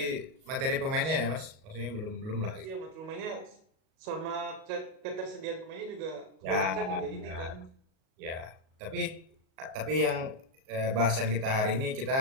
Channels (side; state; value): left; late; 38 ms